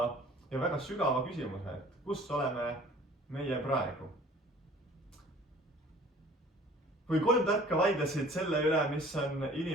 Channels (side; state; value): both; normal; correlation 0.50